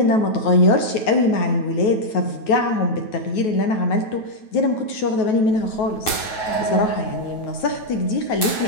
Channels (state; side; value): late; right; 9.3 ms